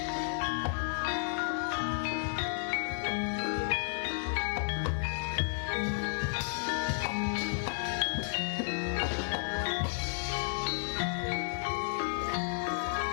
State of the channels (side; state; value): right; silent; 56 dB below the other